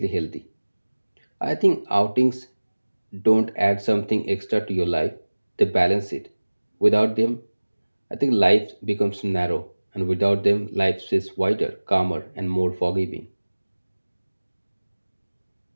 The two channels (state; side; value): inverted; both; correlation -1.00